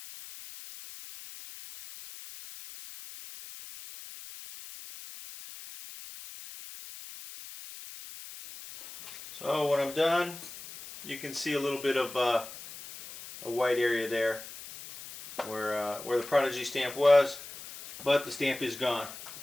So when I'm done, you can see a little bit of a white area there where the Prodigy stamp was, but the stamp is gone.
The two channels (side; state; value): left; noise; hiss, 14 dB below the sound